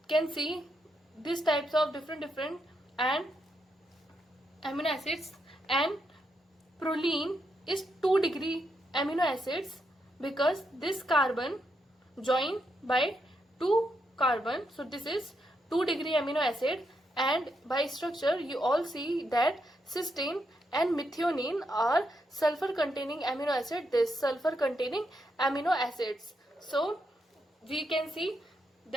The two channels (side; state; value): both; normal; correlation 0.80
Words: can see these types of different and amino acids. And proline is 2-degree amino acids because this carbon join by 2 carbon, so this is 2-degree amino acid. And by structure you all see that cysteine and methionine are sulfur containing amino acid, this sulfur containing amino acids. So we can see